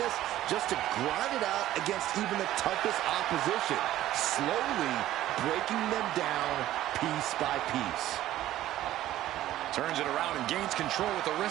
just to grind it out against even the toughest opposition, slowly breaking them down piece by piece. Turns it around and gains control with the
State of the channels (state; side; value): quieter; left; 13.9 dB